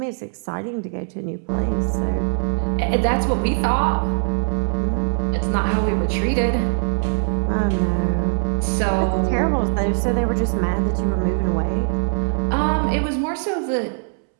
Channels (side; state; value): left; silent; 65 dB below the other